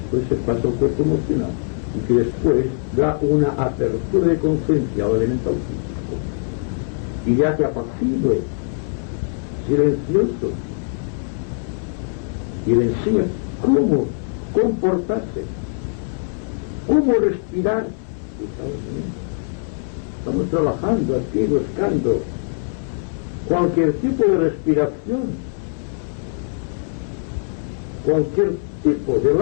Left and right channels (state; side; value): silent; right; 64 dB below the other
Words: se pasa al cuerpo emocional y que después da una apertura de conciencia al elemental físico. Y ya que apacible, silencioso, y le enseña cómo comportarse, cómo respirar. Estamos trabajando aquí, buscando cualquier tipo de respiración, cualquier tipo de